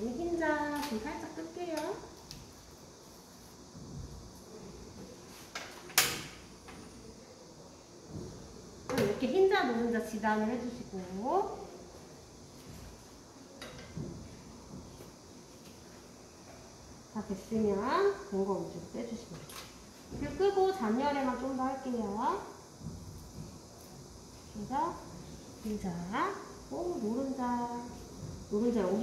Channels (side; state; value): both; identical; correlation 1.00